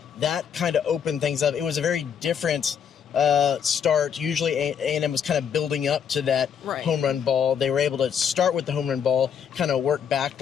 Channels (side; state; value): right; quieter; 7.7 dB